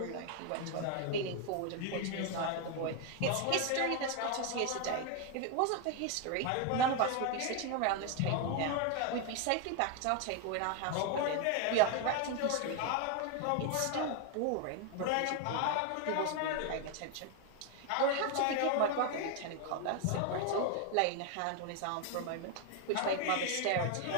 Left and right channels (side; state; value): both; different; correlation 0.01